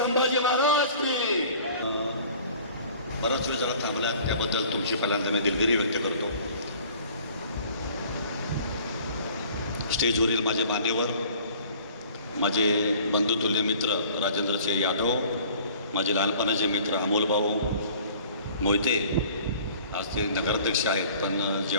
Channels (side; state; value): both; inverted; correlation -0.50